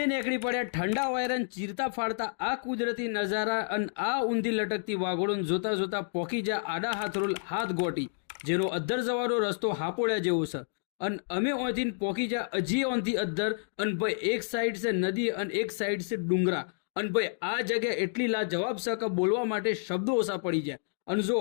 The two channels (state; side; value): silent; right; digital silence